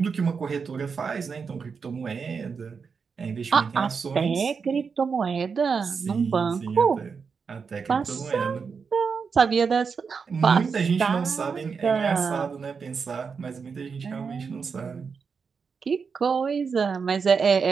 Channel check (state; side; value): quieter; left; 5.6 dB